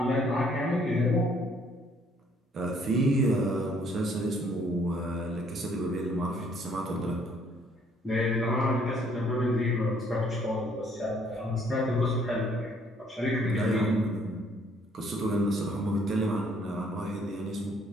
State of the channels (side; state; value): both; normal; correlation 0.64